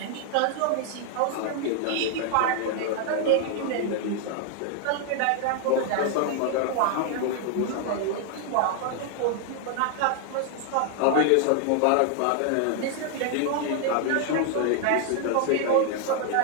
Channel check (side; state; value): both; different; correlation 0.00